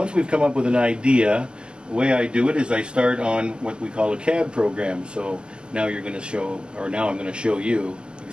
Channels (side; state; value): left; late; 0.048 ms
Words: we've come up with an idea, the way I do it is I start on what we call a CAD program. So now I'm going to show you